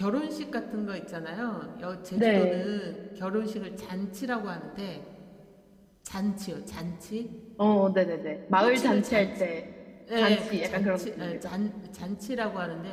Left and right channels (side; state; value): both; identical; correlation 1.00